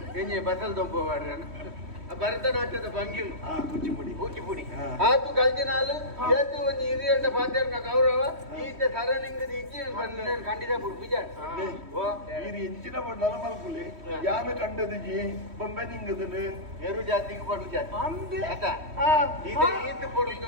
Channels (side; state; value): left; late; 3.1 ms